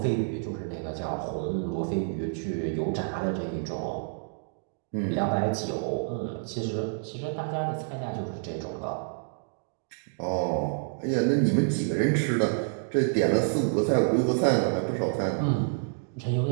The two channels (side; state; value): left; silent; digital silence